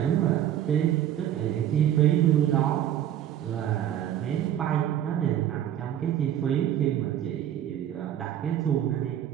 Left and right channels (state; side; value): quieter; left; 11.0 dB